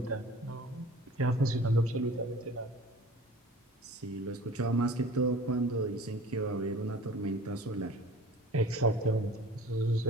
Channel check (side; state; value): both; normal; correlation 0.44